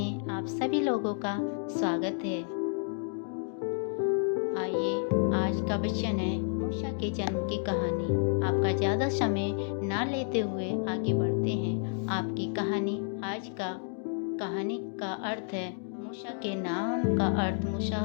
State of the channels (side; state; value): right; silent; 57 dB below the other